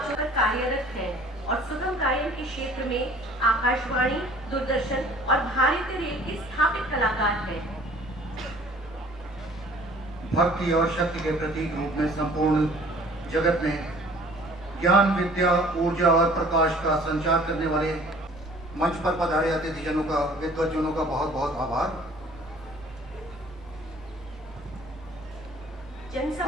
कार्यरत हैं और सुगम गायन के क्षेत्र में आकाशवाणी, दूरदर्शन और भारतीय रेल के स्थापित कलाकार हैं। भक्ति और शक्ति के प्रतीक रूप में संपूर्ण जगत में ज्ञान, विद्या, ऊर्जा और प्रकाश का संचार करने वाले मंच पर पधारे अतिथिजनों का, विद्वज्जनों का बहुत बहुत आभार।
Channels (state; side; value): normal; both; correlation 0.52